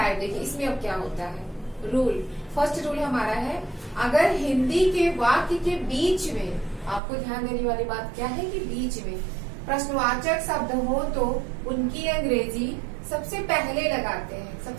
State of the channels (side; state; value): left; drops out; at 7.0 s